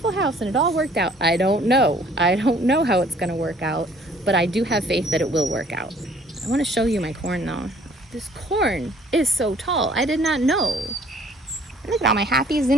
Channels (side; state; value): both; normal; correlation 0.56